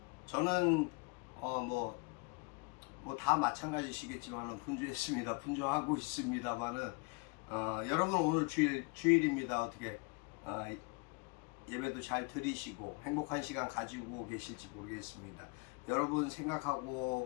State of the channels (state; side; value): quieter; right; 31.6 dB